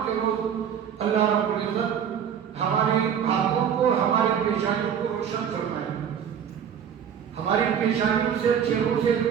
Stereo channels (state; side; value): quieter; left; 8.3 dB